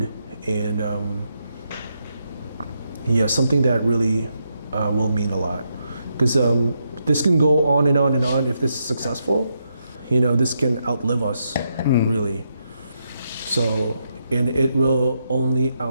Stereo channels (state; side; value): inverted; both; correlation -0.81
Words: and yeah, something that really will mean a lot. Because this can go on and on and on if this is successful. You know, this can outlive us, really. So, and it will only